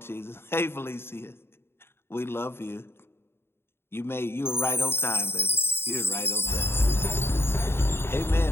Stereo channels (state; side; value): late; right; 0.11 ms